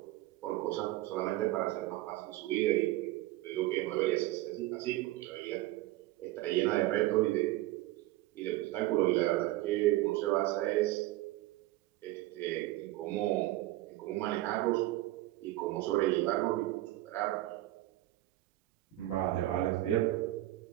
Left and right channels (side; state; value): left; quieter; 16.8 dB